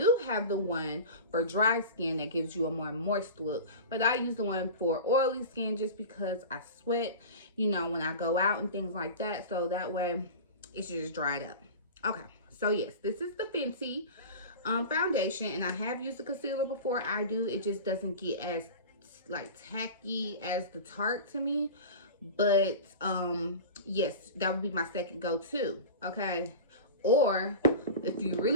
have the one for dry skin that gives you a more moist look, but I use the one for oily skin just because I sweat, you know, when I go out and things like that, so that way it should just dry it up. Okay, so yes, this is the Fenty foundation, and I have used the concealer before. It just doesn't get as like tacky as the Tarte to me, but yes, that would be my second go-to. Okay, or if you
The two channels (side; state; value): both; inverted; correlation -0.31